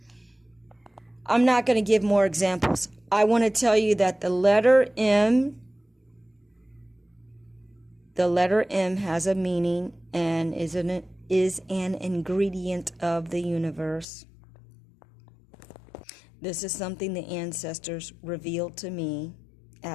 I'm not going to give more examples. I want to tell you that the letter M has a meaning and is an ingredient of the universe. This is something the ancestors revealed to me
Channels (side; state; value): right; drops out; at 14.1 s